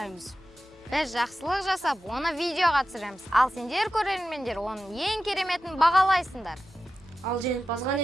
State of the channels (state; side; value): noise; left; hum, 29 dB below the sound